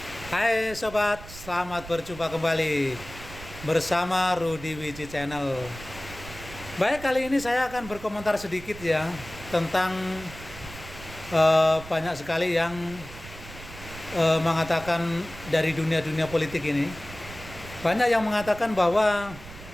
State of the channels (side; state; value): right; noise; rumble, 15 dB below the sound